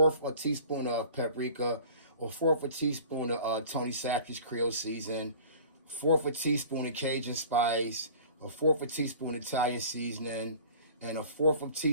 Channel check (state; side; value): inverted; both; correlation -0.44